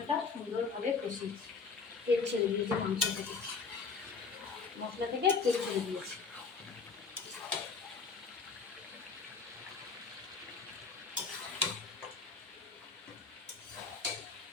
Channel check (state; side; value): quieter; right; 5.1 dB